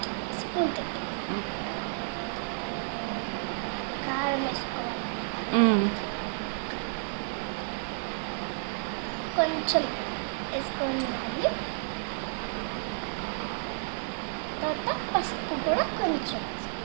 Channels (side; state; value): left; silent; 57 dB below the other